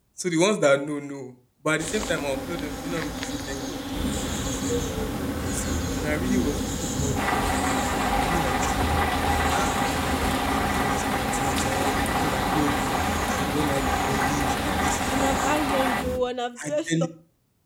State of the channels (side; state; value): both; identical; correlation 1.00